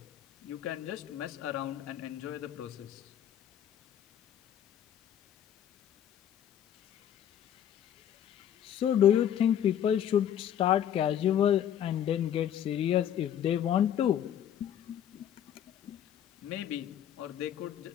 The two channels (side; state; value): right; quieter; 10.1 dB